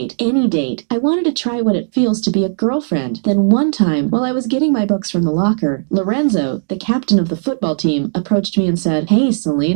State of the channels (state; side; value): silent; left; digital silence